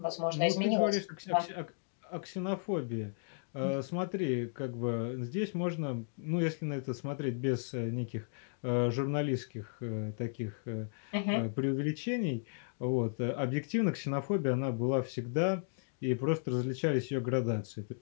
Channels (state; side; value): silent; right; digital silence